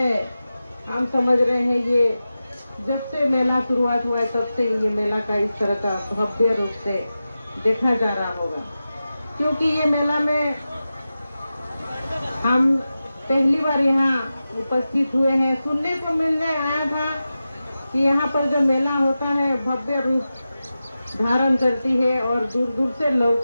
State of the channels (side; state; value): both; inverted; correlation -0.93